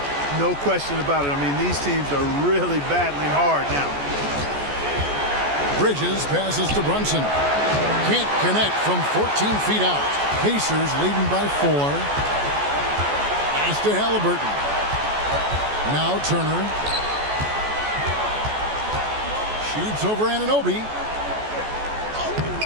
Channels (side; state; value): left; late; 14 ms